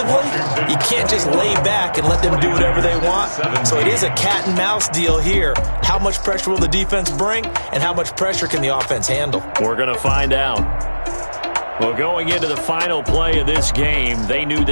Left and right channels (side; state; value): both; inverted; correlation -1.00